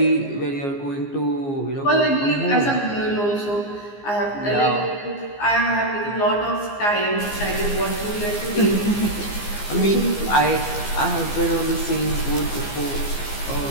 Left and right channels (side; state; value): right; late; 15 ms